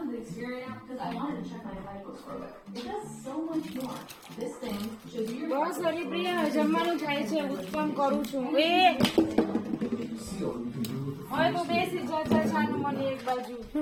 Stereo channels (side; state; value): both; identical; correlation 1.00